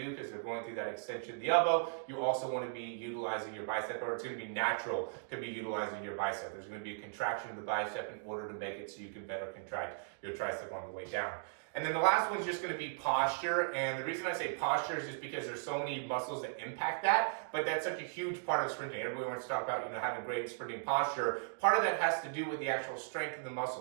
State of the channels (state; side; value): silent; left; digital silence